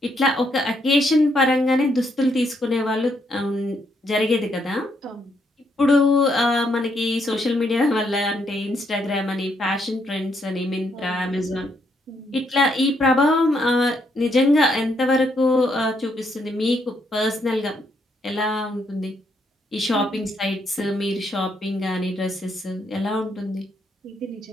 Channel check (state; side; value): normal; both; correlation 0.75